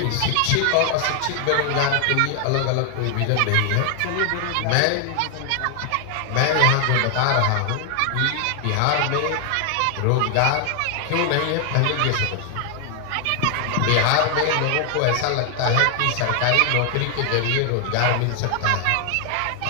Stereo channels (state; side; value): different; both; correlation 0.00